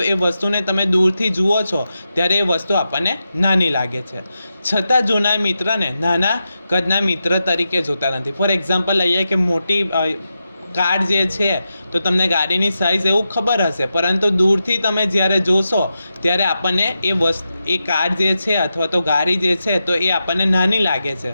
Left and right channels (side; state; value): both; inverted; correlation -0.89